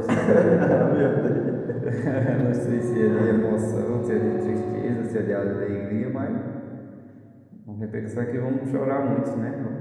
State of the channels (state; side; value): identical; both; correlation 1.00